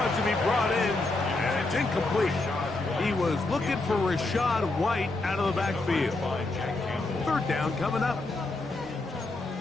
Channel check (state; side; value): quieter; right; 3.0 dB